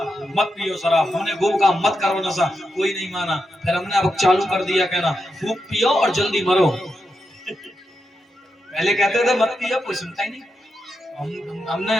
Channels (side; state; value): both; normal; correlation 0.86